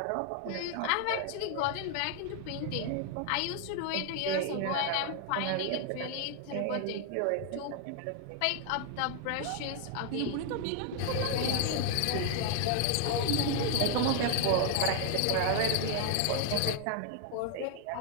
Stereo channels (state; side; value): different; both; correlation 0.00